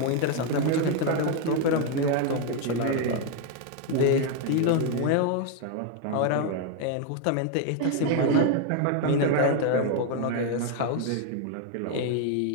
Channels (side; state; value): both; different; correlation 0.01